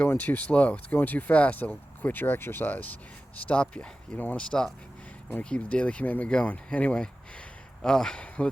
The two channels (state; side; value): normal; both; correlation 0.95